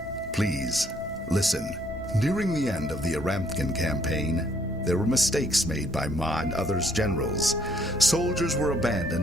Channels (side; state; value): both; normal; correlation 0.67